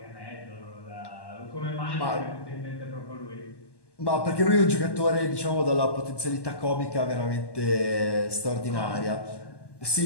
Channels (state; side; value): late; right; 1.1 ms